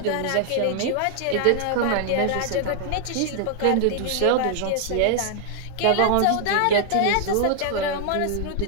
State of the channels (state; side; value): different; both; correlation 0.00